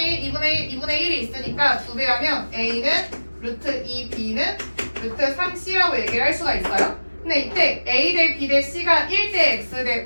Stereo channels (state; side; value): inverted; both; correlation -1.00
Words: 1, 2분의 1, 2분의 1이 있으니까 2배 하면 A는 루트 2, B는 루트 3C라고 얘기를 할 수가 있어요. 근데 이때 A 대 B 대 C가 1 대 X 대